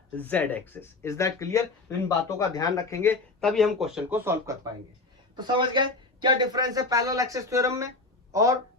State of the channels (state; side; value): quieter; right; 3.4 dB